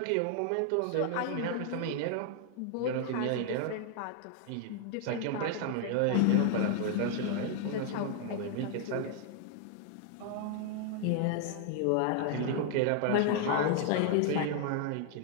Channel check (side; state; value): both; different; correlation 0.00